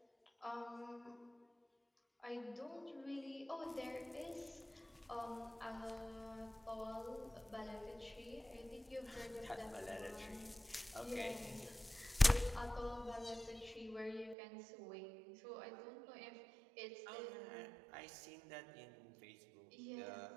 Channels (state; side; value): drops out; left; at 14.4 s